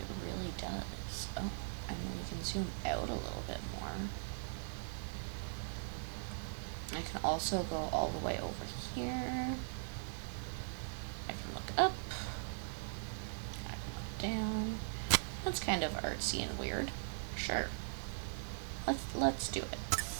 really does. Oh, I mean, we can zoom out a little bit more. I can also go all the way over here. I can look up. I can look down. That's kind of artsy and weird. Sure. Let's do it.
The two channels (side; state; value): left; silent; digital silence